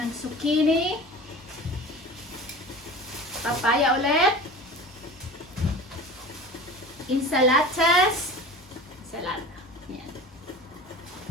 zucchini. Papaya ulit. Insalatas. Salata. Yan.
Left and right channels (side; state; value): both; normal; correlation 0.37